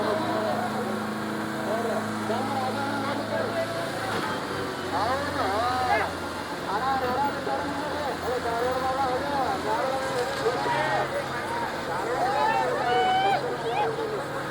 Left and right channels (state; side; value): identical; both; correlation 1.00